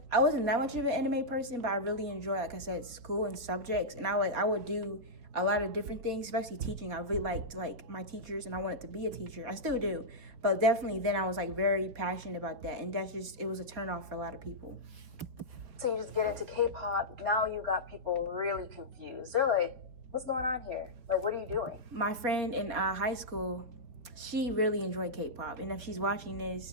I wasn't that much of an anime person, but I really enjoy, like I said, school and subjects. And I would do a lot of different things, especially teaching. I really liked like my teachers, and I wanted to be a teacher. I still do, but definitely then I was like very passionate about that, and it was a turnoff for a lot of people. So you just get into K-pop. Now you got people really confused. They're like, what's going on here? Like, what are you doing? My friend in high school, she really enjoyed K-pop, and if she's watching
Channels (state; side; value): late; left; 4.4 ms